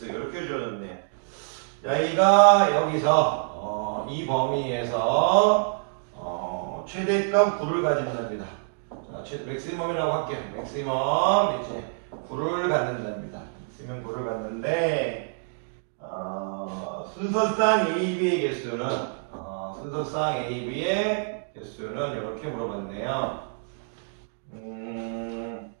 이렇게 주어졌네요. 여기가 여기서 이 범위에서 최대값 9를 가진답니다. 자, 맥시멈이라고 할게요. 맥시멈 이제 9를 갖는답니다. 맥시멈 9를 갖는데 순서상 AB의 개수는 순서상 AB의 개수는 이렇게 물어봤네요.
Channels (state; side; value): silent; left; digital silence